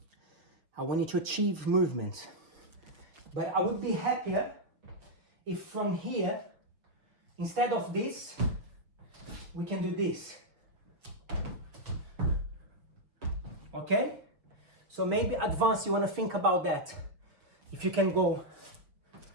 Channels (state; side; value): late; left; 6.1 ms